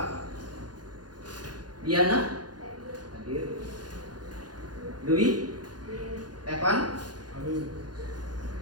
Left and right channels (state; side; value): late; left; 0.69 ms